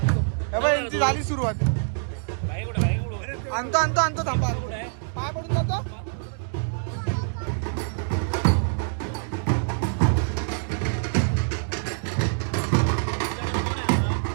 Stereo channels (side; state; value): left; silent; digital silence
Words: हे बघ, यांची झाली सुरुवात. आणतो थांबा. पाय पडून जातो.